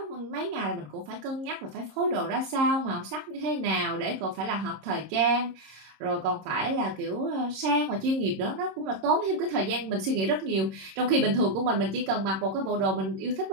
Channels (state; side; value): late; left; 26 ms